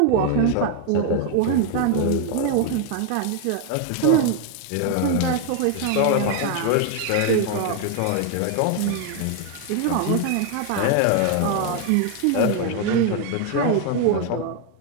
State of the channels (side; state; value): both; different; correlation 0.01